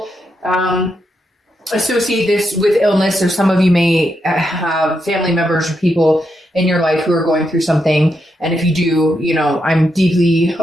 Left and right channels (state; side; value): normal; both; correlation 0.83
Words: associate this with illness, or some of you may have family members or people in your life who are going through something. And if you do, I'm deeply